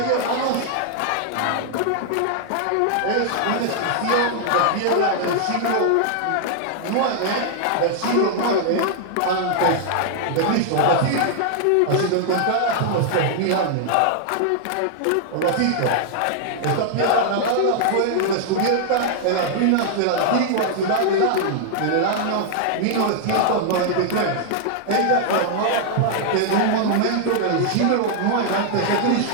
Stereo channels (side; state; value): both; different; correlation -0.01